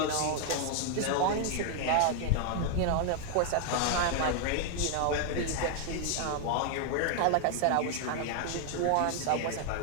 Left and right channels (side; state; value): both; different; correlation 0.00